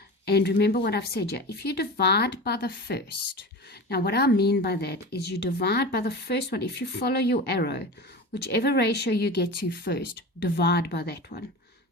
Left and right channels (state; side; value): normal; both; correlation 0.30